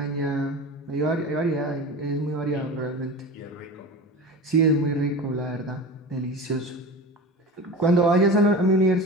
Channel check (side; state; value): both; normal; correlation 0.31